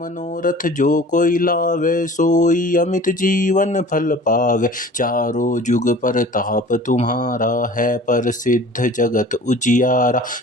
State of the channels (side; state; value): both; normal; correlation 0.44